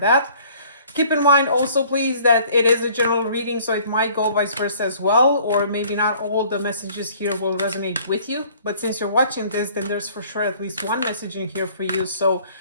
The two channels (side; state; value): both; inverted; correlation -0.55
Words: Keep in mind also, please, that it is a general reading, so it might go vice versa as well, or maybe not all the messages here will resonate with you. But since you're watching this, then there's for sure at least one message in here for you. So